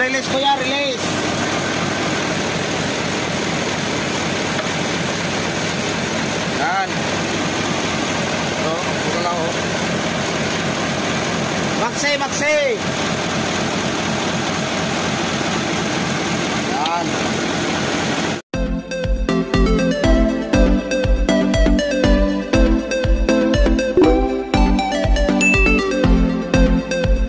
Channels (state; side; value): identical; both; correlation 1.00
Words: release kuya, release. Yan. So, ito lang oh. Maxi, maxi. Yan.